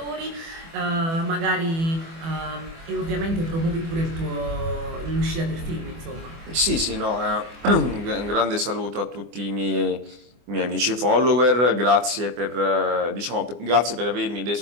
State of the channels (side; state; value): left; late; 24 ms